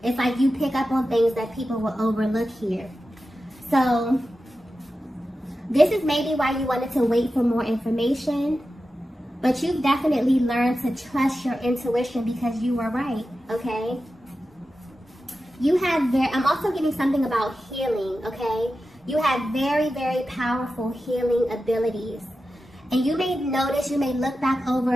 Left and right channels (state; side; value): normal; both; correlation 0.92